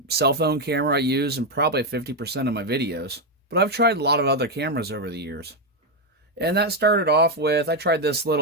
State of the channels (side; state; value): both; normal; correlation 0.05